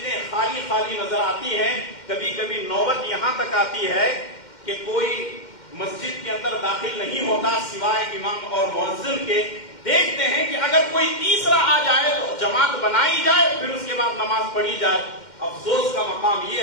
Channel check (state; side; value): late; right; 2.1 ms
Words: خالی خالی نظر آتی ہیں. کبھی کبھی نوبت یہاں تک آتی ہے کہ کوئی مسجد کے اندر داخل نہیں ہوتا سوائے امام اور مؤذن کے. دیکھتے ہیں کہ اگر کوئی تیسرا آ جائے تو جماعت بنائی جائے، پھر اس کے بعد نماز پڑھی جائے. افسوس کا مقام یہ